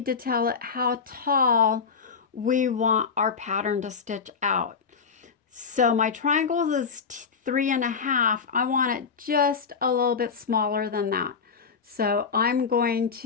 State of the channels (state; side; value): quieter; right; 5.7 dB